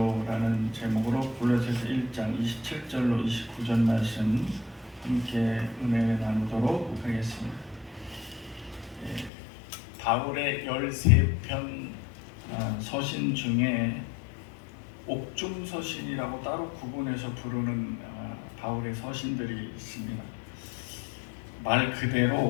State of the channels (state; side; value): drops out; right; at 9.3 s